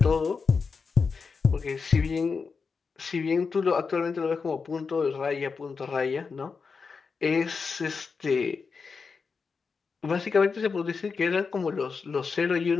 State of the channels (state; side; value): quieter; right; 5.1 dB